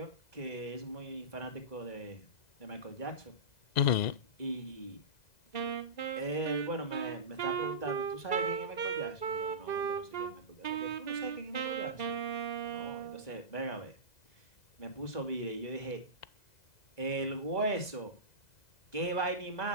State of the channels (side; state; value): right; late; 2.0 ms